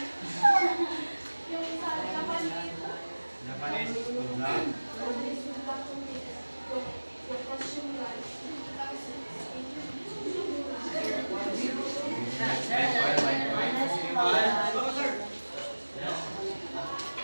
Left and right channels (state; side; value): inverted; both; correlation -1.00